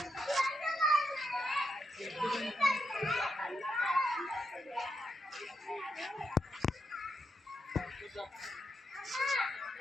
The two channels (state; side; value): normal; both; correlation 0.83